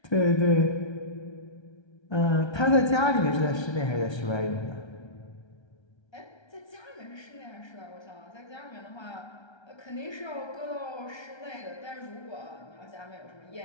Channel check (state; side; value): late; right; 1.3 ms